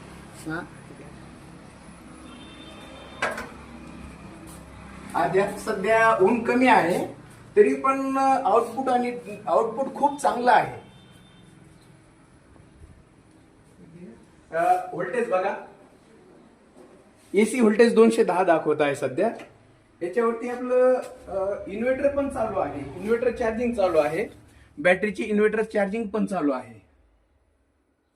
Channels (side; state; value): both; identical; correlation 1.00